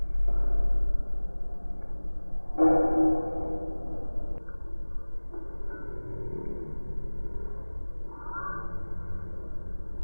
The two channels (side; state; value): both; inverted; correlation -1.00